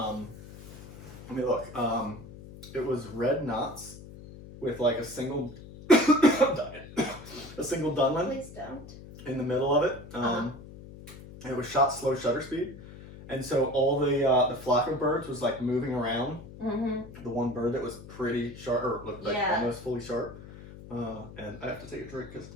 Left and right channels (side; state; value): left; noise; hum, 16 dB below the sound